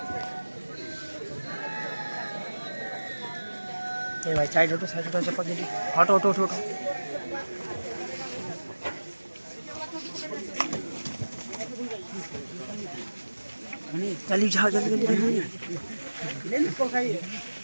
ये भाई साइड हटो चप्पल जल्दी हटो हटो हटो जल्दी जाओ जल्दी जल्दी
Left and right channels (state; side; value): inverted; both; correlation -1.00